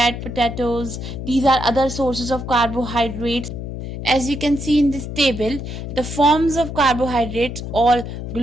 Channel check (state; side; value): noise; left; hum, 7 dB below the sound